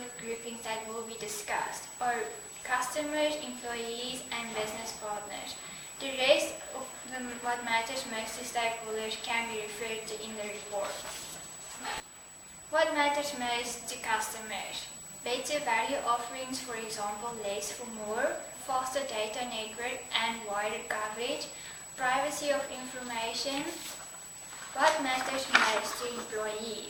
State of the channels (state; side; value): identical; both; correlation 1.00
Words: groupings that will be discussed are customers, employees, and business partners. The rest of what matters most to stakeholders can be referred to in the report. What matters most to customers? Better value offerings, for example, less for more, faster data network and wider coverage, privacy of information. What matters most to